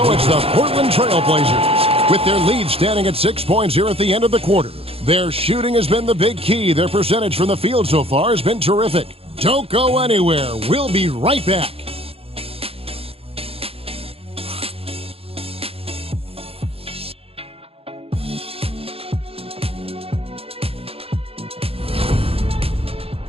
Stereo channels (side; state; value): left; late; 0.28 ms